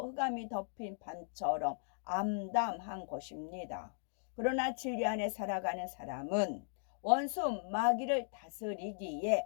흑암이 덮인 밤처럼 암담한 것입니다. 그러나 진리 안에 살아가는 사람은 원수 마귀를 다스리기에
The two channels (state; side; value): silent; right; digital silence